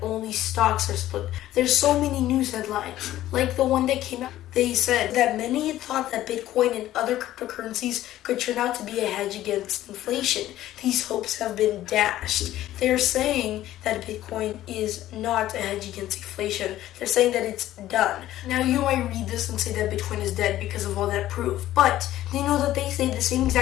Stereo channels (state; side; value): quieter; right; 13.9 dB